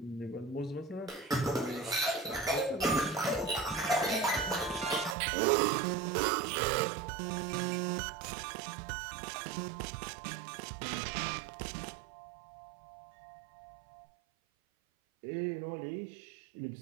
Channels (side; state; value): left; drops out; at 5.2 s